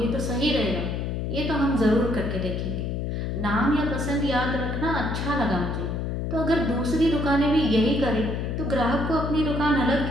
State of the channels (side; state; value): left; noise; hum, 2 dB below the sound